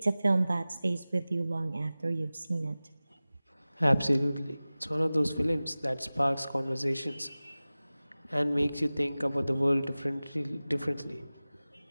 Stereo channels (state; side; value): inverted; both; correlation -0.98